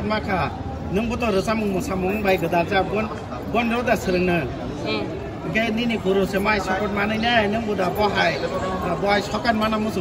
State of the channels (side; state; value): both; identical; correlation 1.00